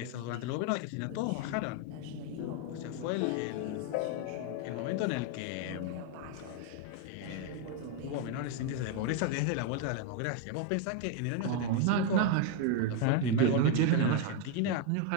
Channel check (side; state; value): both; different; correlation 0.01